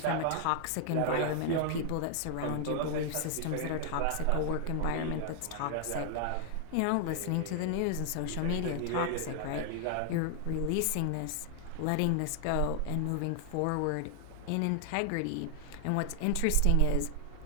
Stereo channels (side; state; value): both; different; correlation 0.00